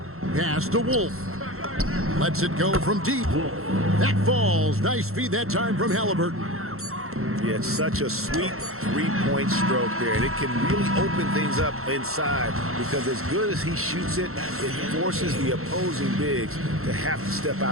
Pass to Wolf. Lets it go from deep. That falls. Nice feed that time from Halliburton. Yeah, it's such a sweet three-point stroke there, and it can really open things up inside because as good as he shoots it, it forces the opposing bigs to have to step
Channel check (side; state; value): left; late; 0.62 ms